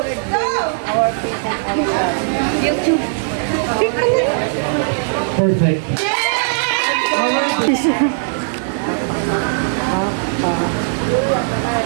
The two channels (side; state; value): left; silent; digital silence